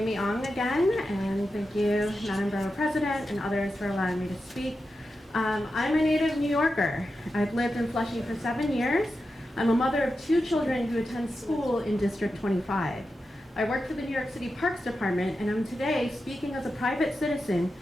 Ong again, and thank you, Madam Borough President and others for allowing me to speak. I'm a native New Yorker. I've lived in Flushing for 7 years. I'm a mother of 2 children who attend school in District 25. I work for the New York City Parks Department, and I'm today speaking as a private citizen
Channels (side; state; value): both; normal; correlation 0.90